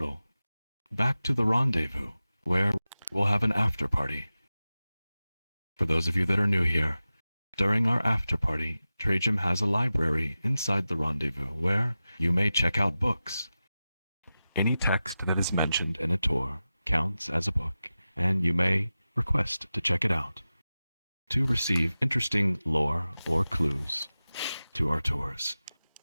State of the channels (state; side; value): inverted; both; correlation -0.95